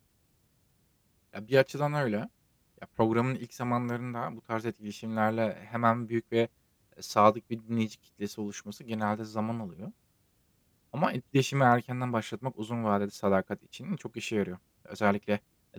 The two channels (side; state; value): both; identical; correlation 1.00